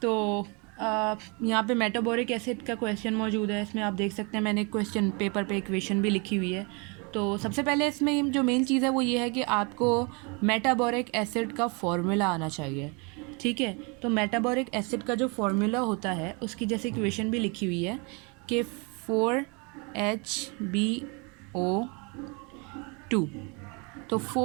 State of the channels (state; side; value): quieter; left; 31.8 dB